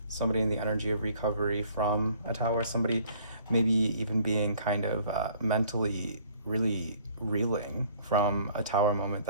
Somebody in the energy of recovery from a tower. Somebody maybe even being kind of mentally really reeling from a tower moment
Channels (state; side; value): inverted; both; correlation -0.57